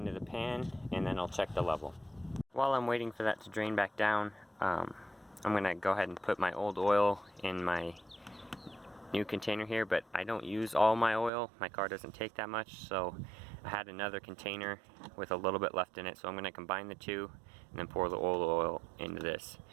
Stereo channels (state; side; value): drops out; left; at 11.3 s